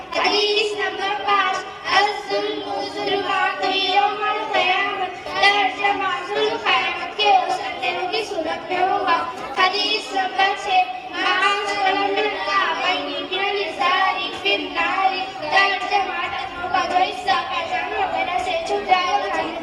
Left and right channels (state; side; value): identical; both; correlation 1.00